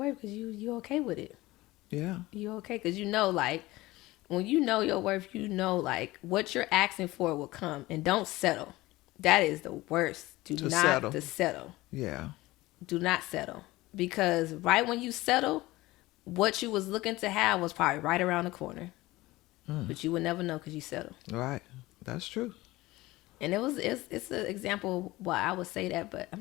because you okay with it. Yeah. You okay, because you know, like, when you know your worth, you know, like, what you're asking for will come. And don't settle. That is the worst. Do not settle. Yeah. Do not settle. Because right when you settle, what you was looking to have was probably right around the corner. But you would never know because you settle. Right. That's true. And it's an example why I would say that, but I'm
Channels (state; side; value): quieter; right; 19.0 dB